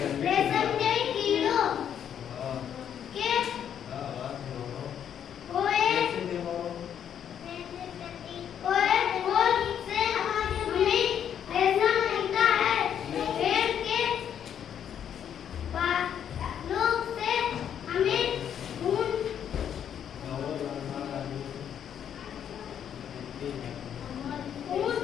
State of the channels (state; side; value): quieter; right; 9.0 dB